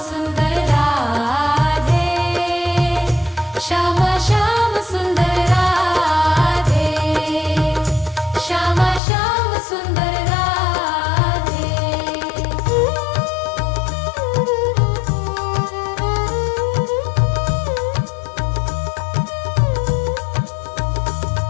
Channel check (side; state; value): right; drops out; at 9.0 s